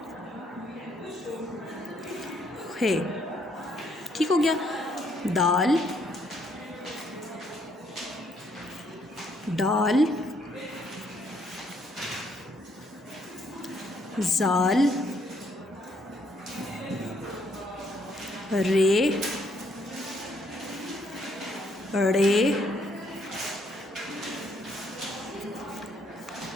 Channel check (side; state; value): both; normal; correlation 0.70